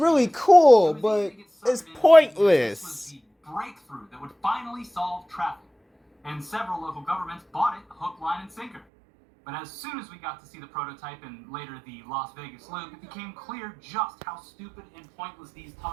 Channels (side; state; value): left; drops out; at 8.8 s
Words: cool, but it's pointless. This was the breakthrough that would finally solve traffic, and several local governments bought it hook, line, and sinker. But as soon as we got to see the prototype and later the Las Vegas loop, it became clear just how stupid and pointless these